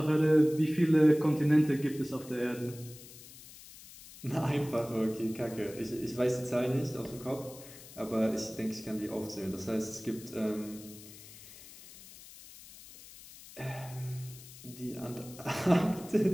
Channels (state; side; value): noise; left; hiss, 18 dB below the sound